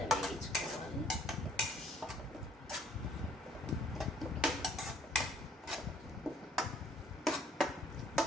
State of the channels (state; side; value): normal; both; correlation 0.62